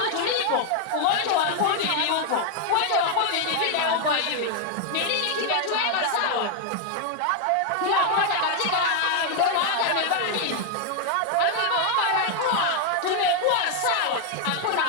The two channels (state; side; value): different; both; correlation 0.00